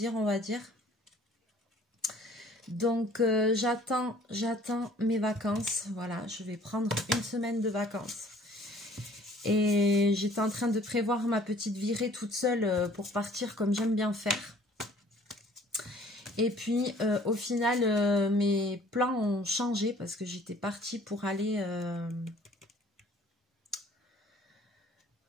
on va dire. Donc, j'attends mes vacances. Voilà, je vais prendre une semaine de vacances. Et j'étais en train de prévoir ma petite virée toute seule pour partir comme j'aime bien faire. Et puis, au final, mes plans ont changé parce que j'étais partie pour aller...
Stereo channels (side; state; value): both; normal; correlation 0.54